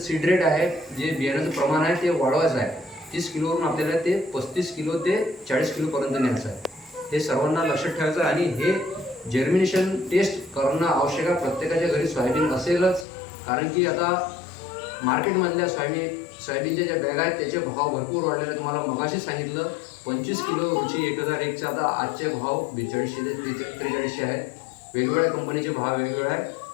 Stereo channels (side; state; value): right; drops out; at 13.1 s